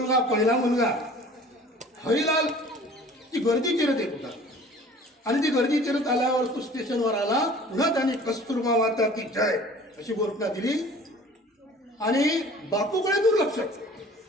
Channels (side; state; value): both; normal; correlation 0.47